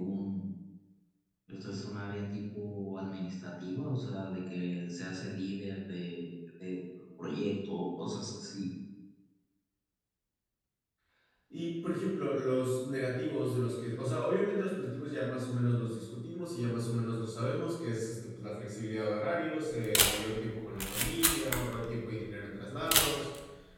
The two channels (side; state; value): both; identical; correlation 1.00